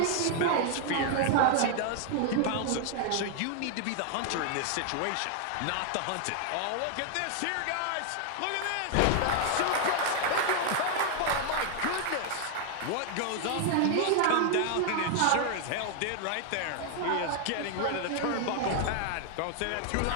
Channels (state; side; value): different; both; correlation 0.00